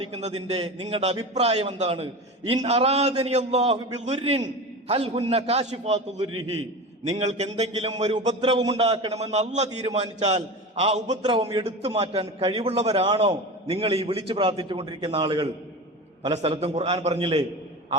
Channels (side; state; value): both; normal; correlation 0.29